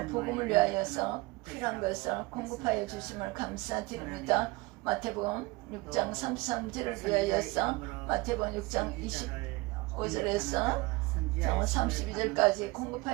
복음을 위하여서 필요한 것을 공급하여 주심을 감사드립니다. 마태복음 6장 33절을 위하여서 마태복음 6장 25절에서 32절까지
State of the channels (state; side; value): quieter; left; 23.3 dB